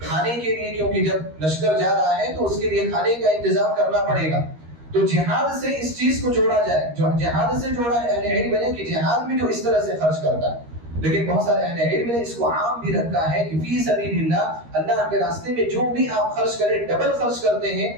کے لیے، کیونکہ جب لشکر جا رہا ہے تو اس کے لیے کھانے کا انتظام کرنا پڑے گا. تو جہاد سے اس چیز کو جوڑا جائے، جو جہاد سے جوڑا ہے. اہل علم نے کہ جہاد میں جو اس طرح سے خرچ کرتا ہے، لیکن بہت سارے اہل علم نے اس کو عام بھی رکھا ہے کہ فی سبیل اللہ، اللہ کے راستے میں جو بھی آپ خرچ کریں، ڈبل خرچ کرتے ہیں،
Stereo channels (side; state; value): left; late; 13 ms